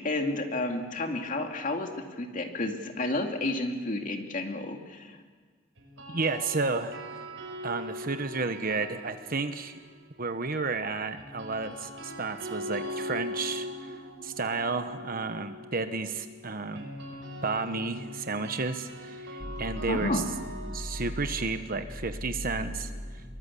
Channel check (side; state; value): both; normal; correlation 0.19